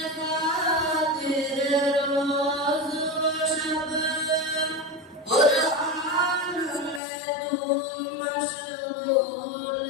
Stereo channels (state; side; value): drops out; right; at 7.0 s